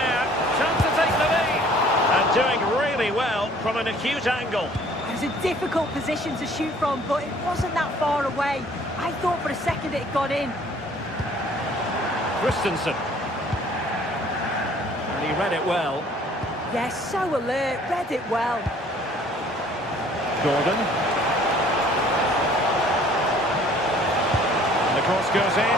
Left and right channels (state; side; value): normal; both; correlation 0.55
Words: Chance to take the lead. And doing really well from an acute angle. It was a difficult position to shoot from, but it wasn't that far away. I thought for a second it had gone in. Christensen. And he read it well. Yes, so alert, read it well. Gordon. And the cross goes in.